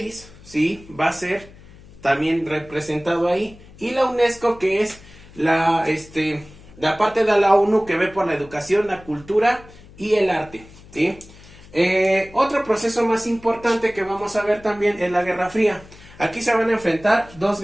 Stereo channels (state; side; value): noise; left; hum, 22 dB below the sound